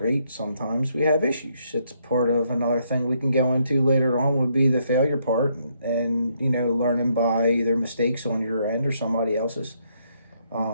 Sometimes we have issues. It's part of another thing we can go into later on would be the failure part and learning by either mistakes on your end or somebody else's.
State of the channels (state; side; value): inverted; both; correlation -0.74